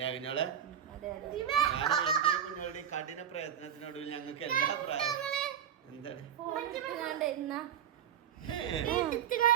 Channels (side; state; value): left; quieter; 9.3 dB